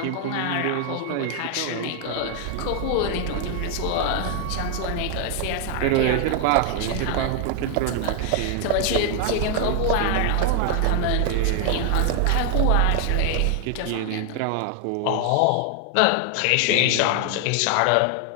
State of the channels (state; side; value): different; both; correlation 0.00